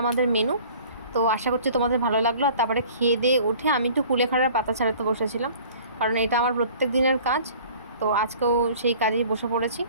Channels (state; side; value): inverted; both; correlation -0.48